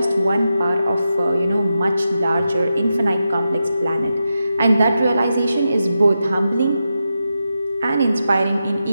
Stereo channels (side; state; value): both; inverted; correlation -0.88